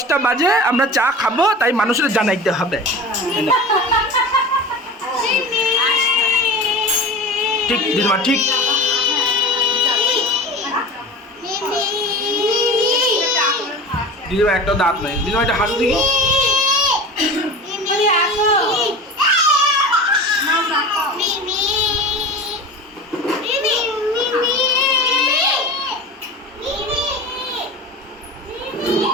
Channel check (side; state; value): both; normal; correlation 0.33